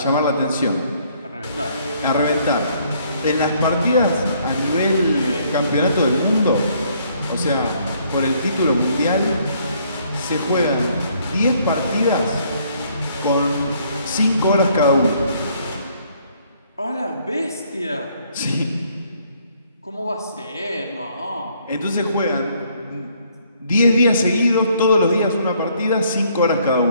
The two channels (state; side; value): inverted; both; correlation -0.65